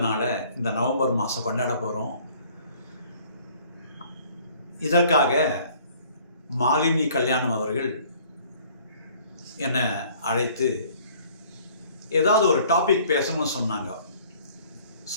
நாளை இந்த நவம்பர் மாதம் கொண்டாட போகிறோம். இதற்காக மாலினி கல்யாணம் அவர்கள் என்னை அழைத்து ஏதாவது ஒரு டாபிக் பேசணும்னு சொன்னாங்க.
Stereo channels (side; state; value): both; inverted; correlation -0.56